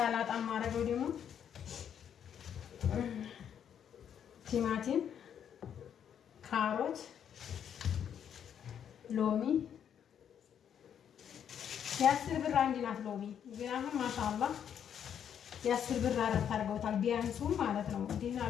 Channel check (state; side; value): quieter; right; 8.7 dB